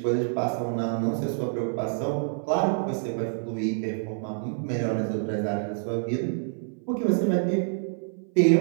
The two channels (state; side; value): silent; left; 60 dB below the other